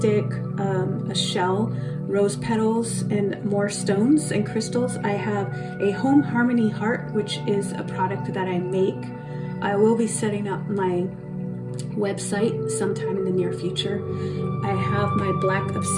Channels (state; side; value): identical; both; correlation 1.00